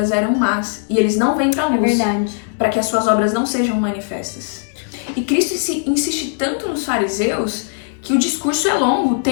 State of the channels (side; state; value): right; silent; 63 dB below the other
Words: eram más, e eles não vêm para a luz, para que as suas obras não sejam manifestas. E Cristo insiste tanto nos fariseus que o discurso é longo,